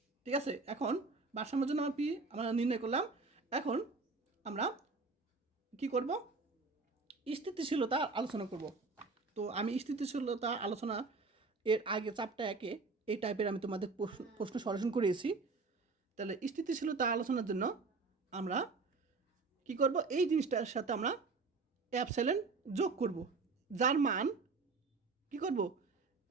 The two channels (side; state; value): left; quieter; 4.1 dB